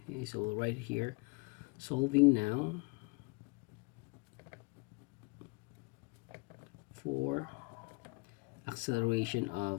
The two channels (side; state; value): right; quieter; 29.7 dB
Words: Okay, so we'll write here, solving now for acceleration